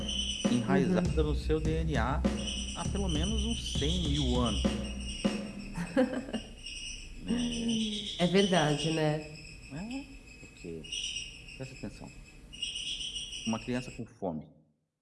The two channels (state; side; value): identical; both; correlation 1.00